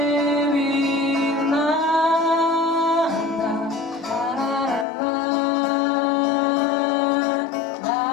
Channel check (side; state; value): right; drops out; at 4.9 s